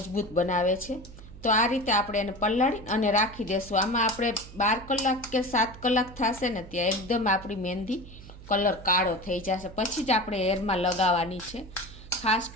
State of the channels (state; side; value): noise; right; hum, 17 dB below the sound